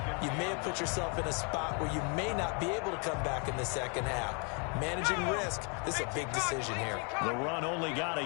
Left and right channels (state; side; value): quieter; right; 36.0 dB